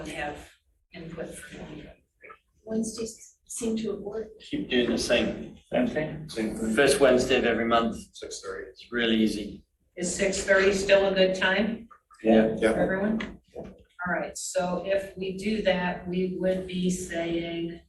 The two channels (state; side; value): identical; both; correlation 1.00